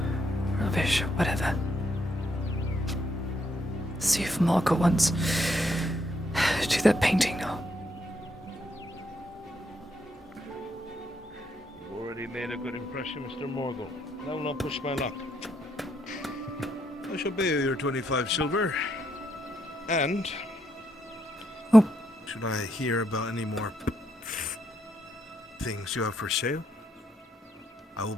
Rubbish, whatever. See if Marco wants to do that painting now. You've already made a good impression, Mr. Morgul. Now not push my luck. I shall pay you your 25 silver. And... Oh. Should I hear about any more things you have for sale, I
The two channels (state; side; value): normal; both; correlation 0.76